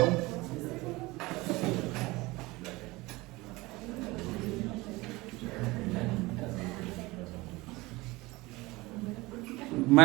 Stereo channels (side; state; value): left; quieter; 21.7 dB